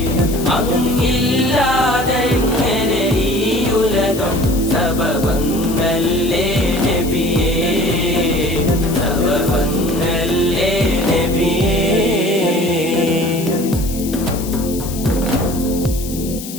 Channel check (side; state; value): left; noise; hiss, 12 dB below the sound